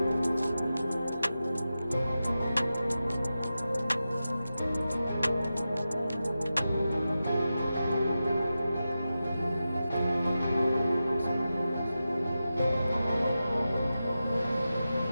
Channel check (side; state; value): both; inverted; correlation -0.92